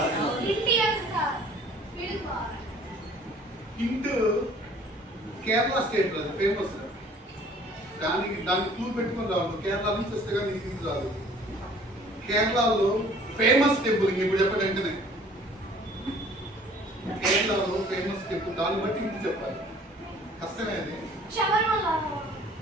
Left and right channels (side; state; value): both; normal; correlation 0.53